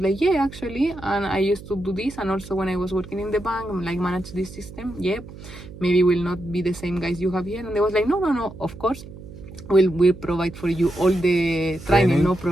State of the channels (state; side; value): noise; right; hum, 15 dB below the sound